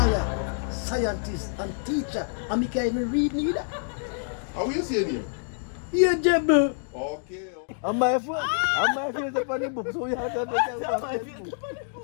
scientist, and teacher. And me can't even read neither. How you saying him? Ageable. Okay. And my phone is up on the book, so you have to understand.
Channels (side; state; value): right; silent; digital silence